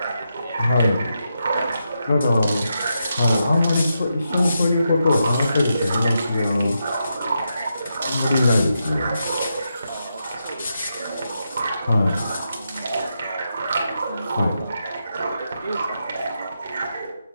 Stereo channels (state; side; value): inverted; both; correlation -0.85